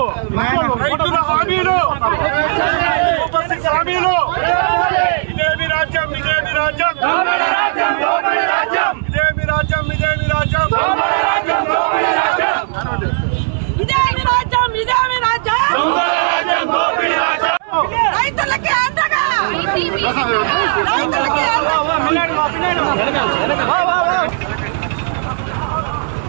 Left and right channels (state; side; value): silent; left; 64 dB below the other